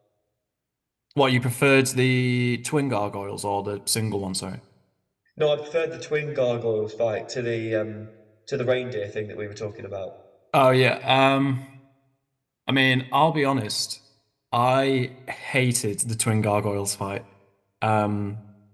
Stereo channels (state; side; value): identical; both; correlation 1.00